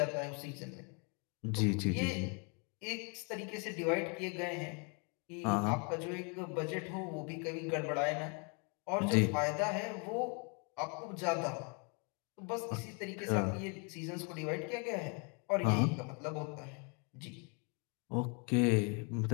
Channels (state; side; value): quieter; right; 35.5 dB